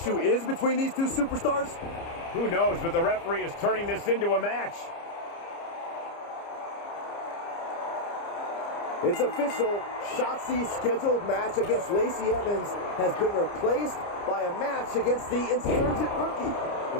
is between these two superstars? Who knows, but the referee is turning this into a match. It's official. Shotzi's scheduled match against Lacey Evans has been replaced by a match against the insurgent rookie.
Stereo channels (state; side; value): late; right; 30 ms